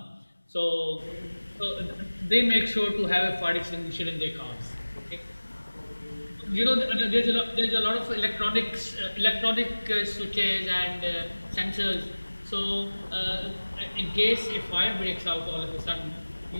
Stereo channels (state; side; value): inverted; both; correlation -1.00